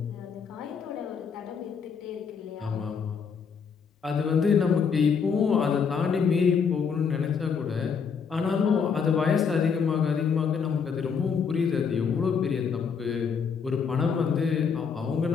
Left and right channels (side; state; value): right; quieter; 6.2 dB